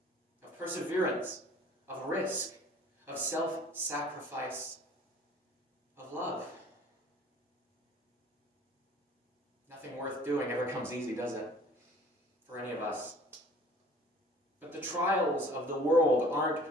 of perseverance, of risk, of self-sacrifice, of love. Nothing worth doing ever comes easy, does it? For any of us. But the trials of the world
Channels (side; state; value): both; normal; correlation 0.51